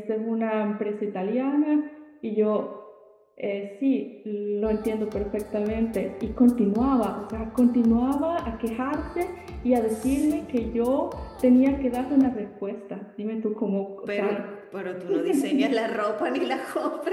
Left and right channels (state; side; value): identical; both; correlation 1.00